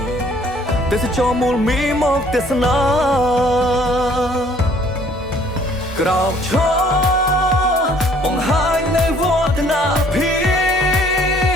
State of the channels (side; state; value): both; normal; correlation 0.59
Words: ទេសចរមូលមីមកទេសនាក្រោកឈរបង្ហាញនៅវឌ្ឍនភា